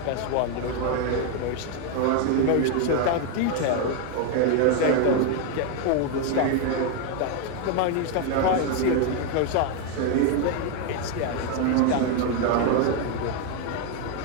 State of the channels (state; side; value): different; both; correlation 0.01